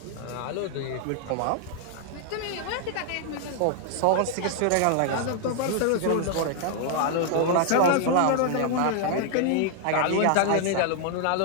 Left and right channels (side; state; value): both; different; correlation 0.00